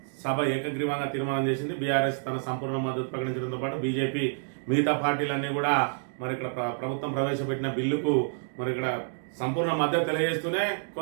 సభ ఏకగ్రీవంగా తీర్మానం చేసింది. బీఆర్ఎస్ తన సంపూర్ణ మద్దతు ప్రకటించడంతో పాటు బీజేపీ మిగతా పార్టీలన్నీ కూడా మరి ఇక్కడ ప్రభుత్వం ప్రవేశపెట్టిన బిల్లుకు మరి ఇక్కడ సంపూర్ణ మద్దతు తెలియజేస్తూనే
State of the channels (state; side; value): silent; left; digital silence